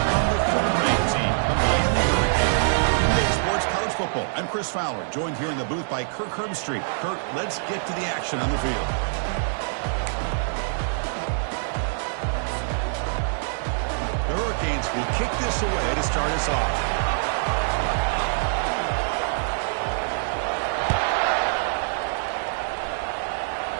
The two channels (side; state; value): left; silent; digital silence